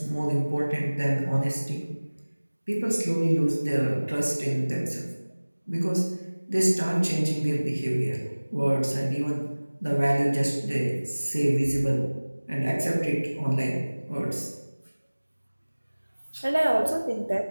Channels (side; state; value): both; inverted; correlation -1.00